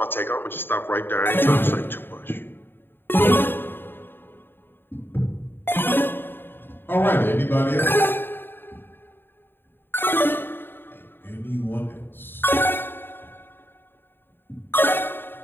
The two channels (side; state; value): right; late; 0.099 ms